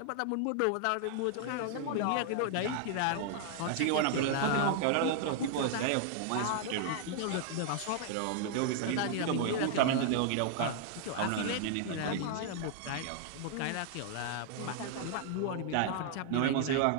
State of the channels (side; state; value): both; different; correlation 0.00